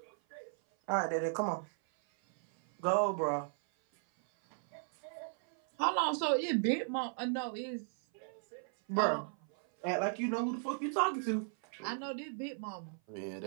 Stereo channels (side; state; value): left; silent; 54 dB below the other